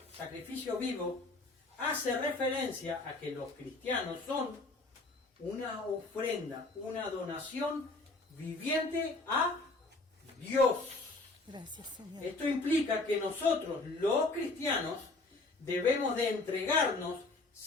hace referencia a que los cristianos son una ofrenda, una donación viviente a Dios. Gracias, Señor. Esto implica que nosotros, los cristianos, debemos de entregarnos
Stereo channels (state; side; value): quieter; right; 3.2 dB